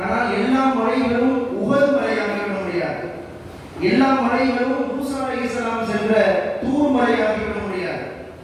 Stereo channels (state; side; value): identical; both; correlation 1.00